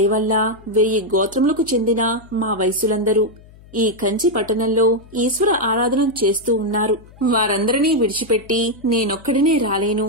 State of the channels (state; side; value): noise; left; hum, 23 dB below the sound